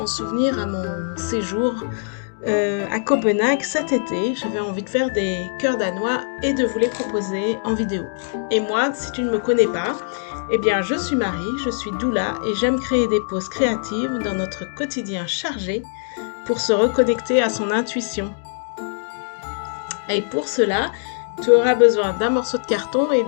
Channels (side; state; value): right; silent; digital silence